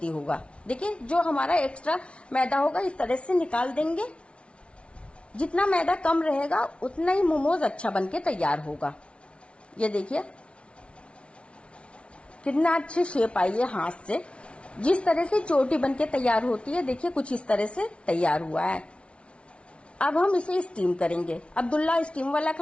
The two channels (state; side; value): late; right; 0.060 ms